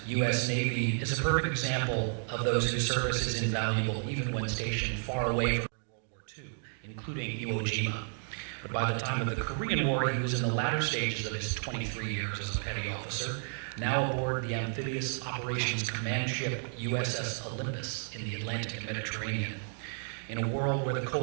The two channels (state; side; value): silent; left; 56 dB below the other